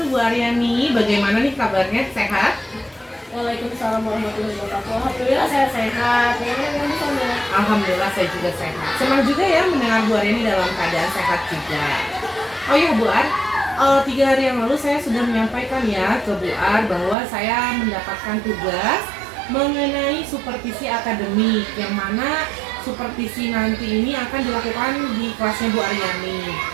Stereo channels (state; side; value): drops out; left; at 17.2 s